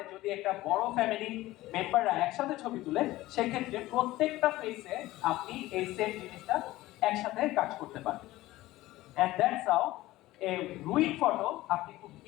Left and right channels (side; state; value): right; quieter; 17.2 dB